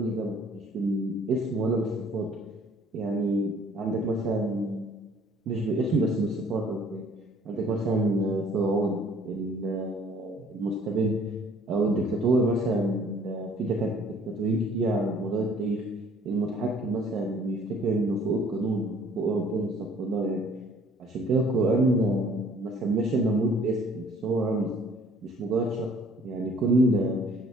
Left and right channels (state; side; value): normal; both; correlation 0.56